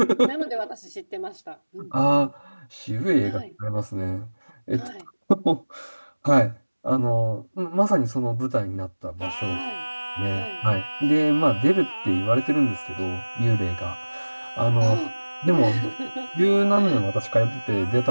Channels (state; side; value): inverted; both; correlation -1.00